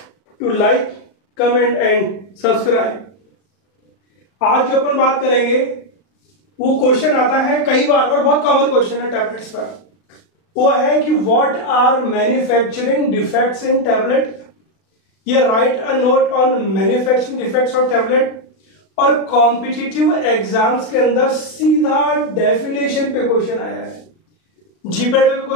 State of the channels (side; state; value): right; late; 36 ms